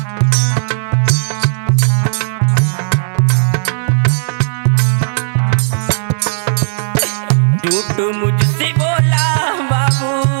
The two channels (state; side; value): silent; left; digital silence